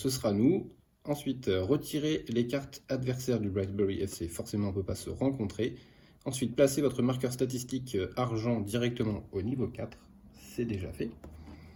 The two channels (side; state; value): both; identical; correlation 1.00